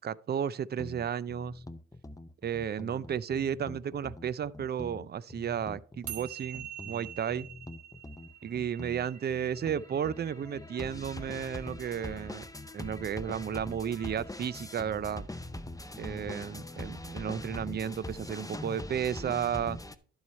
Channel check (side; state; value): left; quieter; 6.8 dB